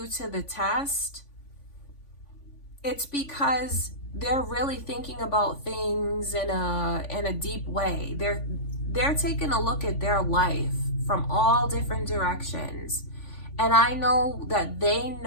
to the test, it's because they're really thinking about things in a deep way. They're taking a look at their life from all different directions. And I know that they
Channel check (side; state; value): right; late; 3.5 ms